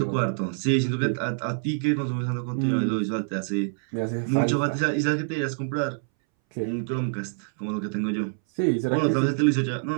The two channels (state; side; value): silent; left; 61 dB below the other